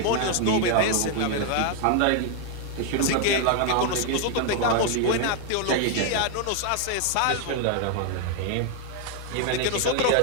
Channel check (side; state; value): both; different; correlation 0.00